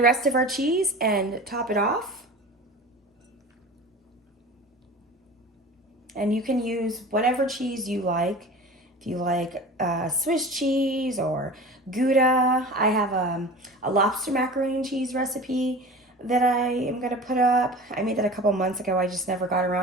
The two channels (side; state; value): both; normal; correlation 0.36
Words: rest of our cheese and top it off. And you can use whatever cheese you like. If you like Swiss cheese or Gouda, I have a lobster macaroni and cheese recipe that I am gonna put up. I made that a couple months ago. I just never got